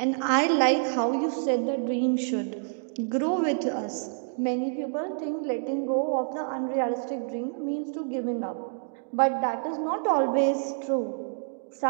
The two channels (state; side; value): silent; left; 60 dB below the other